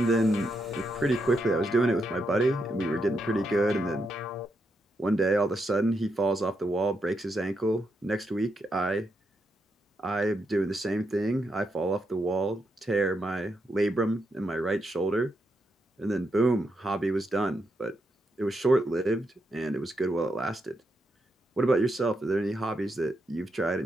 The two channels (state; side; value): normal; both; correlation 0.82